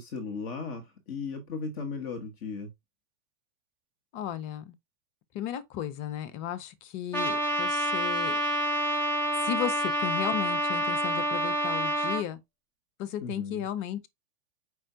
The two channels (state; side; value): late; right; 3.5 ms